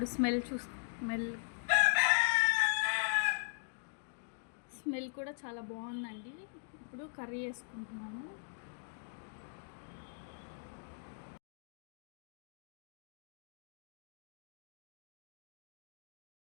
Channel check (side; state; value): right; silent; digital silence